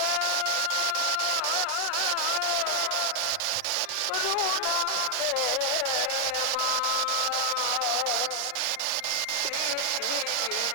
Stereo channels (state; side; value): different; both; correlation 0.00